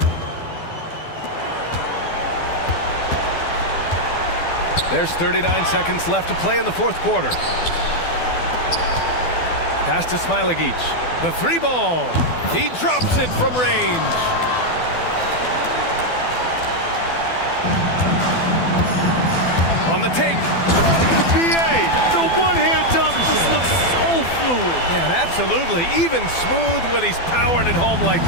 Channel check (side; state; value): right; late; 12 ms